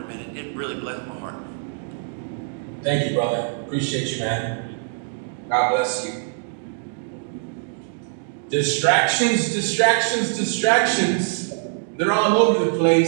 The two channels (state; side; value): silent; left; digital silence